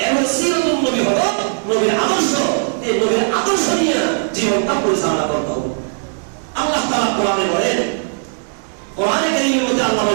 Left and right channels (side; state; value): left; silent; 67 dB below the other